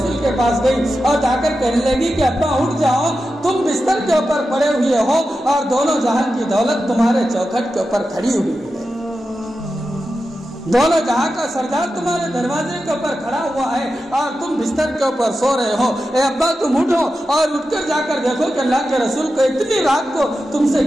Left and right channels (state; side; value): normal; both; correlation 0.91